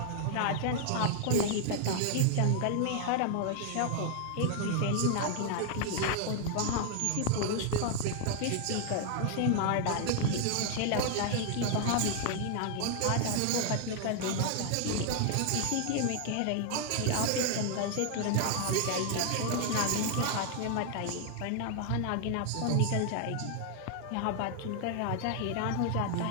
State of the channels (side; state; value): both; different; correlation 0.00